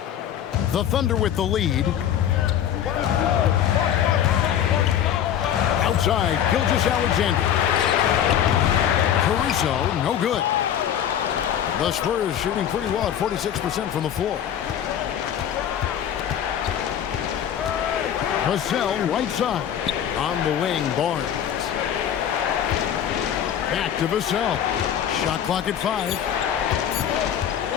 The Thunder with the lead. Outside, Gilgeous-Alexander. Caruso, no good. The Spurs shooting pretty well at 46% from the floor. Vassell, right side. On the wing, Barnes. Back to Vassell. Shot clock at 5.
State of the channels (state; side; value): quieter; right; 9.8 dB